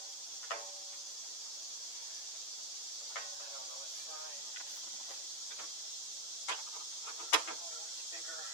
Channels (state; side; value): late; right; 8.9 ms